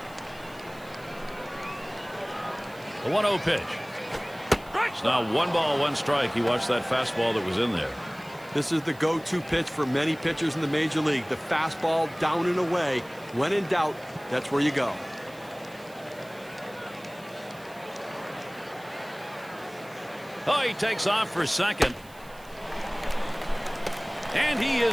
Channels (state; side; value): noise; right; hiss, 24 dB below the sound